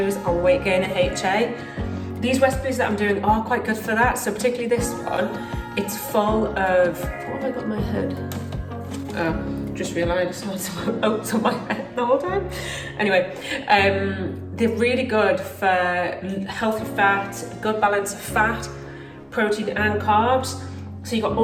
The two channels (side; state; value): both; identical; correlation 1.00